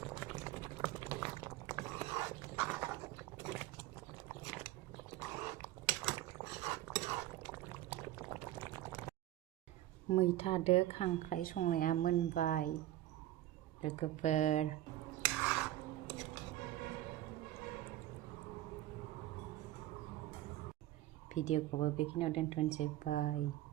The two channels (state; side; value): quieter; left; 14.5 dB